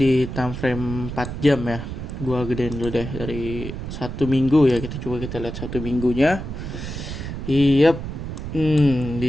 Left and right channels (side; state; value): right; noise; rumble, 7 dB below the sound